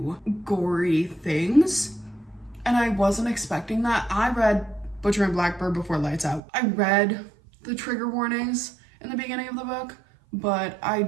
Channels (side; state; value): left; drops out; at 6.4 s